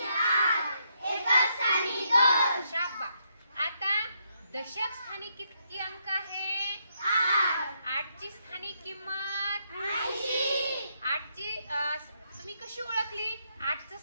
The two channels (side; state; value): both; inverted; correlation -0.77